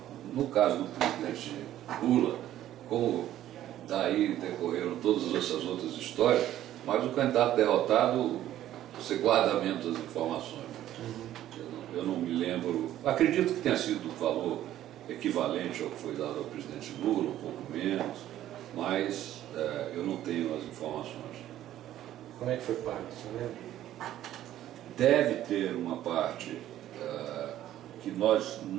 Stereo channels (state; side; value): quieter; left; 12.7 dB